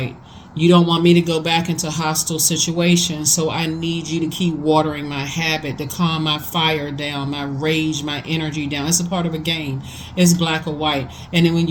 You don't want me to go back into hostile situations, so I need you to keep watering my habit, to calm my fire down, my rage, my energy down. It's a part of a game. It's black or white. And then when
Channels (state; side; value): identical; both; correlation 1.00